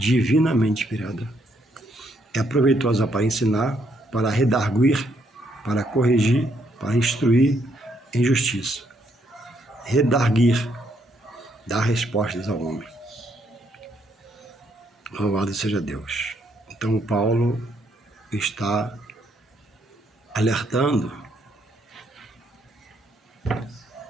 é proveitosa para ensinar, para redarguir, para corrigir, para instruir em justiça. Redarguir, dar respostas ao homem. Louvado seja Deus. Então Paulo está alertando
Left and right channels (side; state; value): both; normal; correlation 0.73